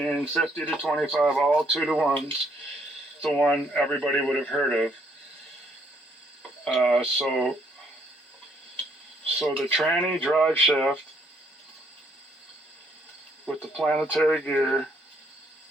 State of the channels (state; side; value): normal; both; correlation 0.69